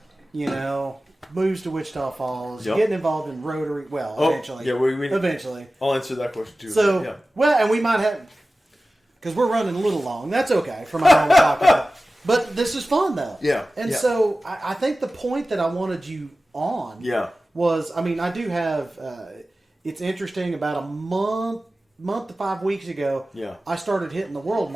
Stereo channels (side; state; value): both; normal; correlation 0.96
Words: Moves to Wichita Falls, getting involved in Rotary. Well, eventually. Yeah, eventually. I'll answer that question too. So, and we might have, because we're running a little long. That's okay for my normal talking. But this is fun though. Yeah. And so I think the point that I wanted you on was, I do have, it's interesting, about a month to 5 weeks ago, I started hitting the world